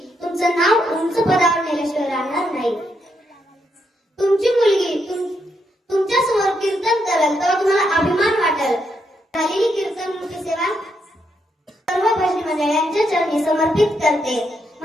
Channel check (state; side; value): normal; both; correlation 0.79